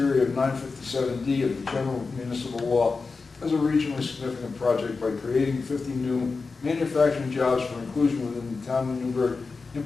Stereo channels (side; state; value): right; quieter; 4.3 dB